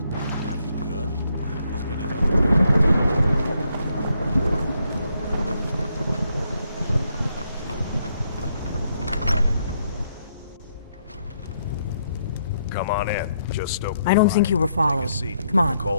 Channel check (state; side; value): inverted; both; correlation -0.75